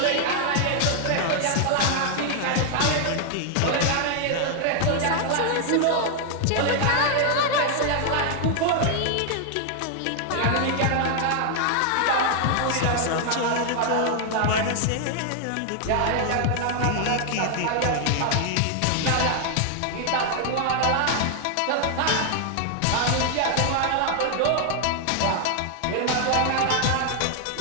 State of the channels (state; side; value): different; both; correlation 0.00